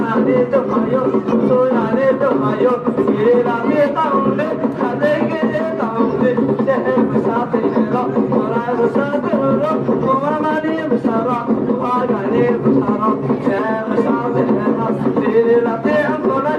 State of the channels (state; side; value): identical; both; correlation 1.00